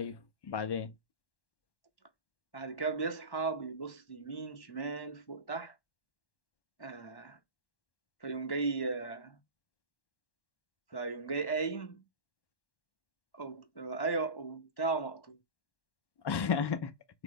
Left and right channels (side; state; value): right; late; 1.1 ms